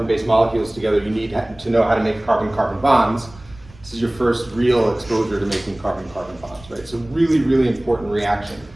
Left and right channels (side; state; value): right; noise; rumble, 23 dB below the sound